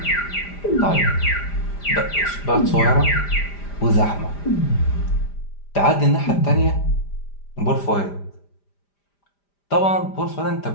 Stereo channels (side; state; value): right; late; 5.0 ms